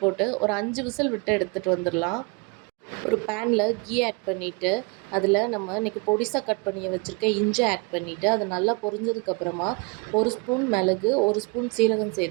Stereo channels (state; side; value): quieter; left; 30.7 dB